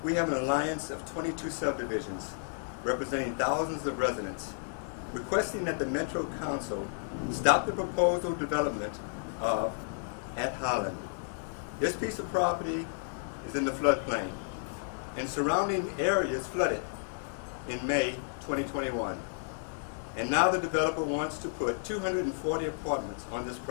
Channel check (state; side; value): silent; right; 56 dB below the other